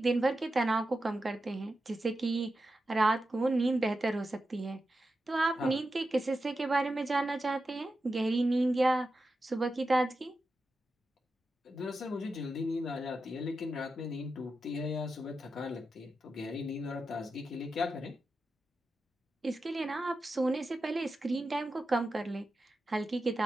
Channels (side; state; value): both; normal; correlation 0.90